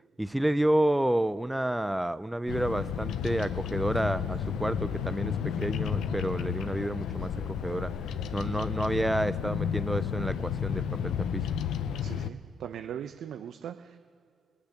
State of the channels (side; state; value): both; normal; correlation 0.82